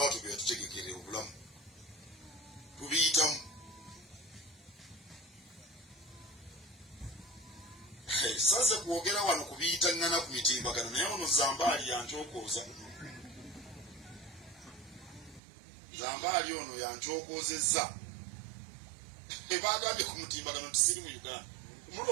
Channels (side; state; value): left; drops out; at 15.4 s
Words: bya tutegekere obulamu tubiyitamu sasa kuogera wano kubiyita ngana ku mitimbagano naye ono Zambaali yankyokoza Zambaali ono yankyokozezza ebagambye ku mutimbagano tisiri mu Uganda